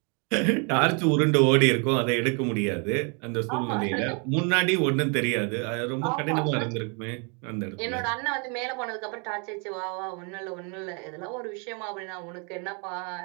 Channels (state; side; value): quieter; left; 35.7 dB